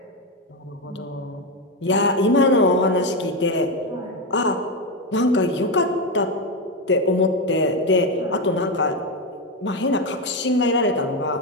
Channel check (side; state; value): both; normal; correlation 0.10